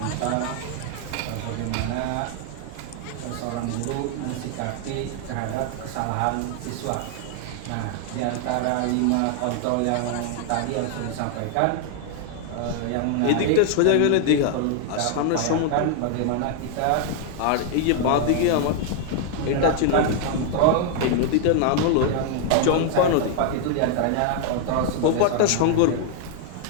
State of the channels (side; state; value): both; different; correlation 0.00